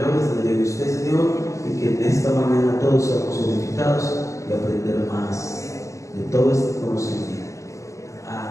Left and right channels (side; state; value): right; late; 0.15 ms